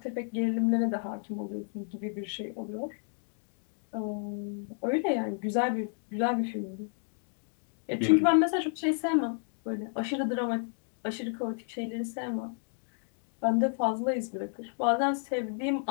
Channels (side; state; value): right; silent; 57 dB below the other